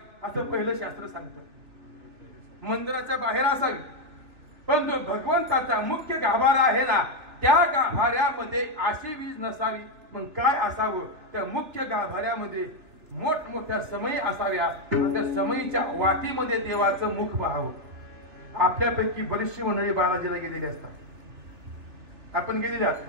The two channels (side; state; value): left; late; 2.8 ms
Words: असं पहिलं शास्त्र सांगतं. मंदिराच्या बाहेर असावी, पण जो भगवंताचा मुख्य गाभारा आहे ना त्या गाभाऱ्यामध्ये अशी वीज नसावी. मग काय असावं? त्या मुख्य गाभाऱ्यामध्ये मोठमोठ्या समयी असाव्या, त्या समयीच्या वाटीमध्ये देवाचं मुख पाहावं. आपल्यापैकी बरीचशी मंडळी बालाजीला गेलेली असतात. आपण गेलेली आहात.